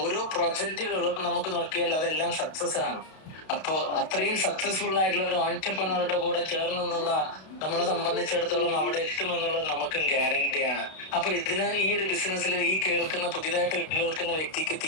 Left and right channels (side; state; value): right; late; 32 ms